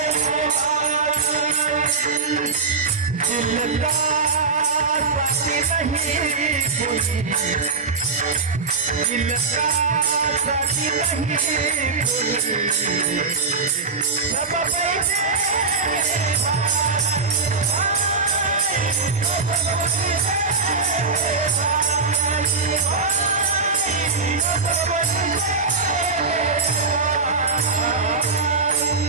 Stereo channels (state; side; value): quieter; left; 4.6 dB